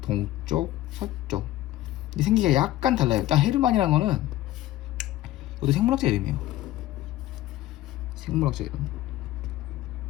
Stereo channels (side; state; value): right; quieter; 14.9 dB